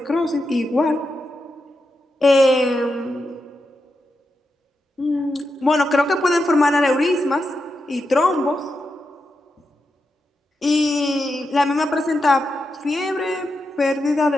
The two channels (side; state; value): both; normal; correlation 0.87